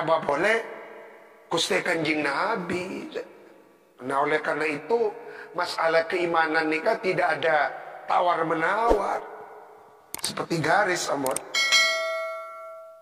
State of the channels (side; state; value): both; identical; correlation 1.00